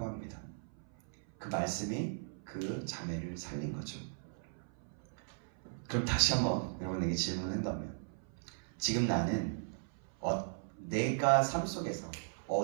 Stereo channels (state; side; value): silent; left; 53 dB below the other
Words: 합니다. 그 말씀이 그 자매를 살린 거죠. 그럼 다시 한번 여러분에게 질문한다면 지금 나는 내가 삶 속에서